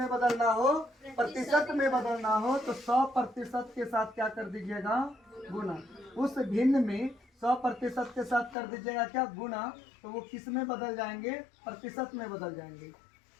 बदलना हो, प्रतिशत में बदलना हो, तो 100% के साथ क्या कर दीजिएगा, गुना। उस भिन्न में 100% के साथ कर दीजिएगा क्या, गुना। तो वो किस में बदल जाएंगे, प्रतिशत में बदल जाएंगे।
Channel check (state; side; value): drops out; right; at 8.6 s